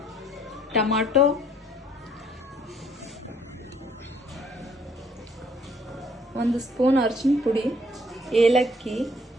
ಟೊಮಾಟೊ, ಒಂದು ಸ್ಪೂನ್ ಅರಿಶಿನ ಪುಡಿ, ಏಲಕ್ಕಿ,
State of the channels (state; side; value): normal; both; correlation 0.63